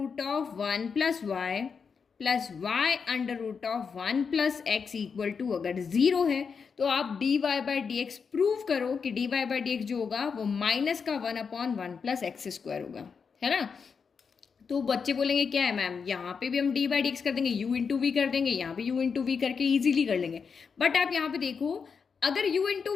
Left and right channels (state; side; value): quieter; right; 5.8 dB